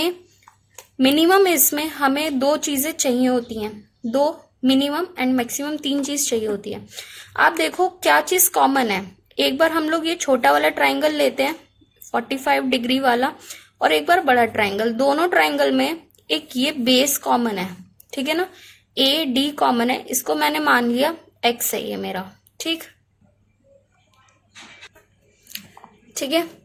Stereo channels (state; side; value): identical; both; correlation 1.00